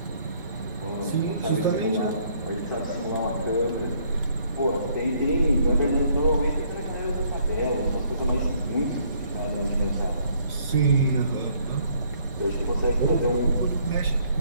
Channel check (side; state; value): both; inverted; correlation -0.65